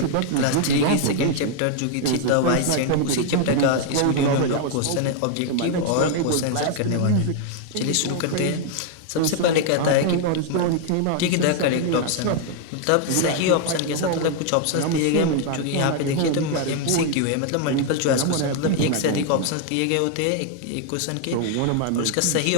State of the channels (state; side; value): different; both; correlation 0.00